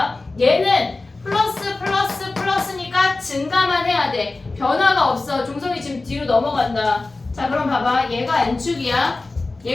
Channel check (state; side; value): quieter; right; 3.3 dB